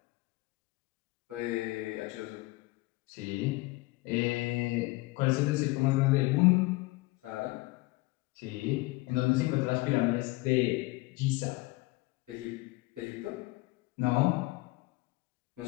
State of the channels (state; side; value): quieter; right; 22.0 dB